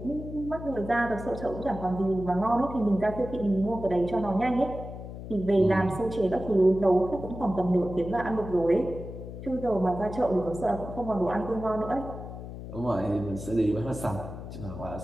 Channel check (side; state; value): left; noise; hum, 10 dB below the sound